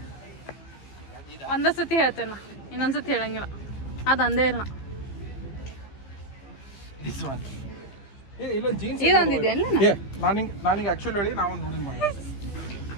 ಒಂದೇ ಸತಿ ಹೇಳ್ತೇನೆ ನಾ, ಇನ್ನೊಂದ್ಸತಿ ಹೇಳಂಗಿಲ್ಲ. ಅದು ಅಂದೇ ಇಲ್ಲ. ದಿಸ್ ಒನ್ ಇಲ್ಲ ಜೀನ್ಸ್ ಇದೊಂದಿದೆ ಅಲ್ಲ. ನಾನಿಂಗೆ ಆಕ್ಚುಲಿ ಹೇಳಿ ನಾವೊಂದು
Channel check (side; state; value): right; late; 15 ms